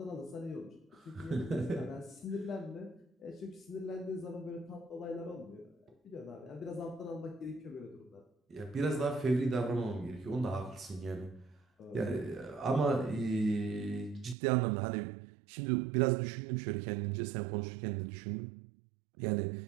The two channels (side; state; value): left; drops out; at 14.4 s